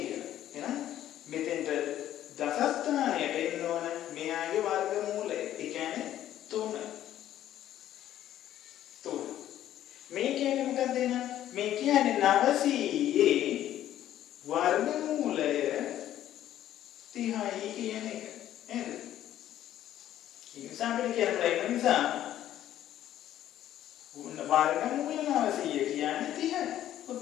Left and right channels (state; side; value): quieter; right; 12.2 dB